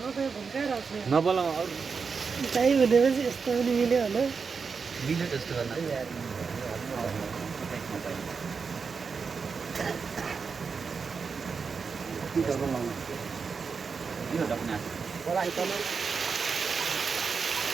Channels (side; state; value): left; quieter; 5.3 dB